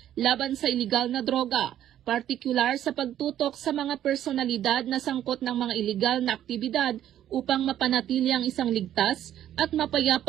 laban sa iligal na droga, partikular sa pagtutok sa mga personalidad na sangkot ng mga iligal na aktibidad upang mapanatili ang isang ligtas at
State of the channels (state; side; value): quieter; left; 11.4 dB